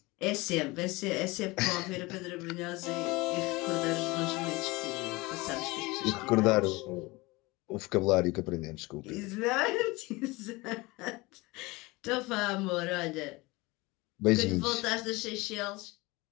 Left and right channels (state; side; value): quieter; right; 22.9 dB